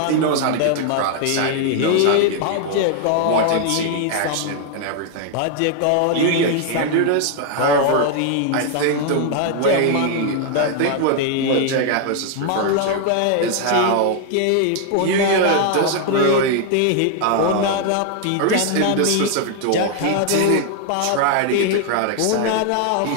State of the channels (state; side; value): different; both; correlation 0.00